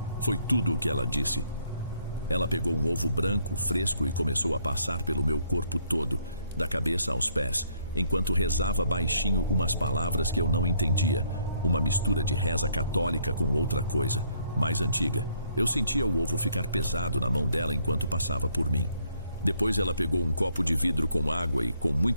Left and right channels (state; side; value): inverted; both; correlation -0.68